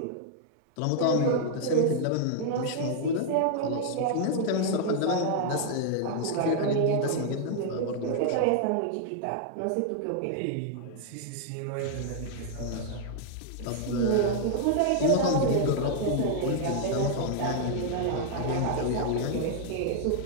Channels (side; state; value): both; different; correlation -0.01